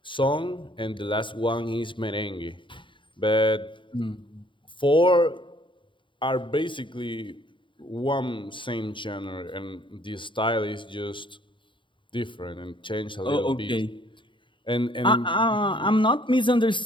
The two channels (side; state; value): right; late; 0.24 ms